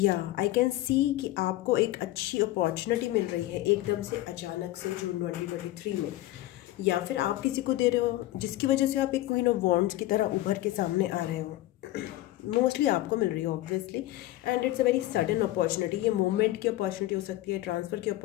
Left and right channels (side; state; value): right; quieter; 16.1 dB